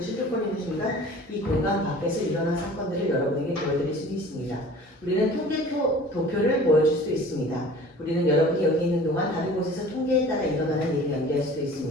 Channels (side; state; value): both; normal; correlation 0.45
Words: 순간 이 공간 밖에서 일어난 사건들을 여러분에게 보여드릴 수 있습니다. 우리는 도표를 보여줄 수 있습니다. 우리는 여러분이 여기 있는 동안 다른 곳에서 통계에 따라 일어나는 일을 연기할 수도